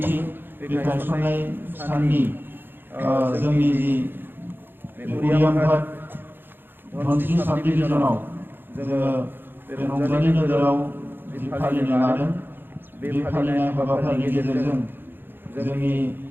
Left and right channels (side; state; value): left; late; 0.099 ms